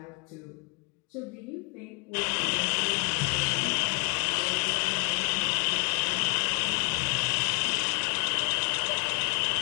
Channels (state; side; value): quieter; right; 33.4 dB